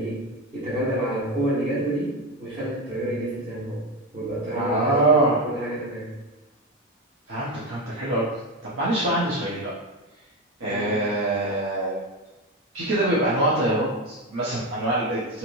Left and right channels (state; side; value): normal; both; correlation 0.16